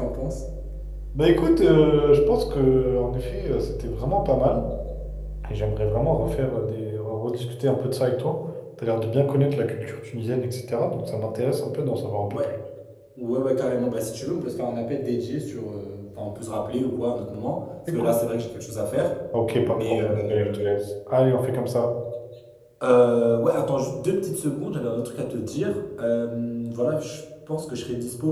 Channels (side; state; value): both; identical; correlation 1.00